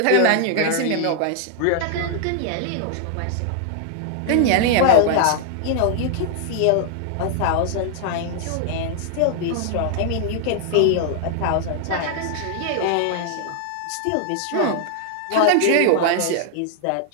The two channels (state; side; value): different; both; correlation 0.00